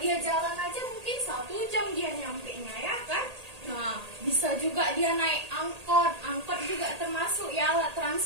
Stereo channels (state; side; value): late; left; 1.8 ms